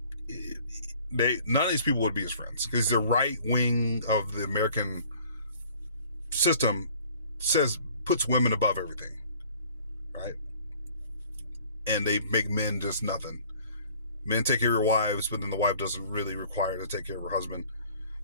None of these people would be his friends because the right wing of the American system puts women above everything, right? And they make men just nothing. Men take care of your wives, but then the wife doesn't really require to take care of her husband.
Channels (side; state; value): both; inverted; correlation -0.53